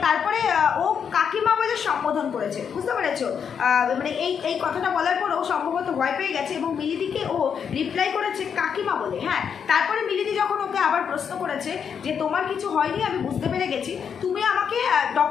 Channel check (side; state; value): right; quieter; 7.2 dB